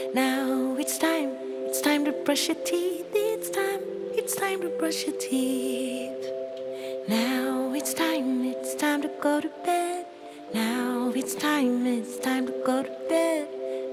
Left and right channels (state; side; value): identical; both; correlation 1.00